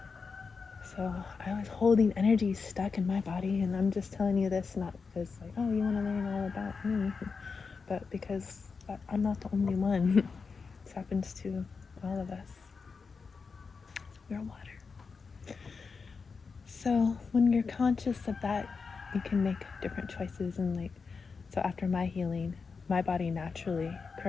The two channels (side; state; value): right; quieter; 5.0 dB